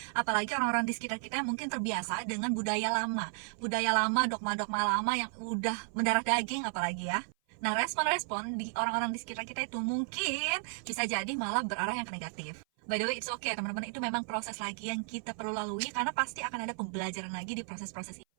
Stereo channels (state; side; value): silent; left; 55 dB below the other